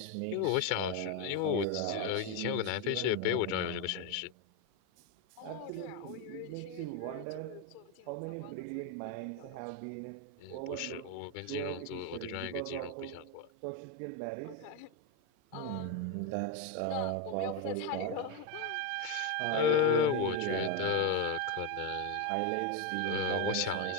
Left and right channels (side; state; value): both; different; correlation 0.03